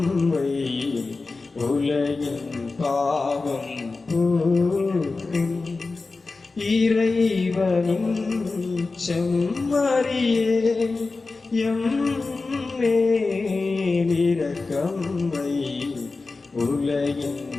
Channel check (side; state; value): right; quieter; 3.8 dB